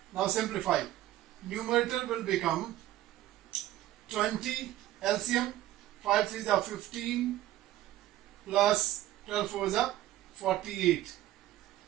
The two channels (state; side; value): quieter; left; 14.4 dB